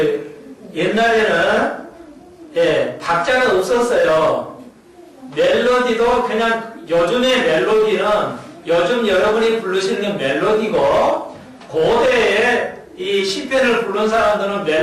옛날에는 박자가 없었어요. 멜로디도 그냥 요즘의 멜로디는 요즘 여러분이 부르시는 멜로디고 고대에 이 시편을 부른 사람들은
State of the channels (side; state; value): both; identical; correlation 1.00